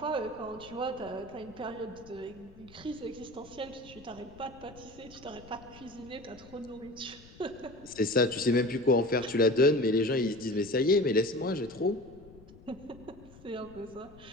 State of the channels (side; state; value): left; noise; rumble, 21 dB below the sound